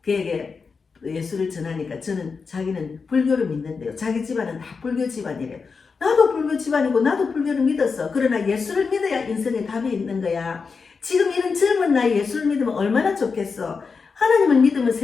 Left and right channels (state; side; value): quieter; right; 5.1 dB